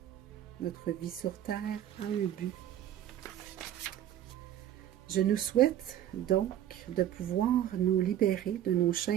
notre vie sur Terre a un but. Je nous souhaite donc de pouvoir nous libérer de nos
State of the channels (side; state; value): left; quieter; 11.4 dB